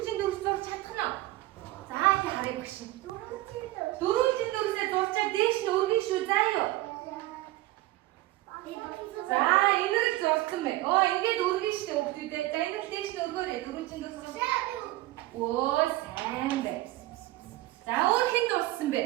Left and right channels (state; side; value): quieter; left; 17.9 dB